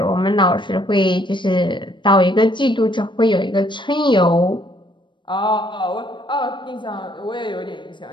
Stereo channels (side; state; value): right; late; 0.23 ms